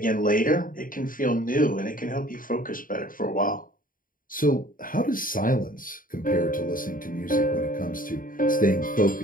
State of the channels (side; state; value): right; late; 0.40 ms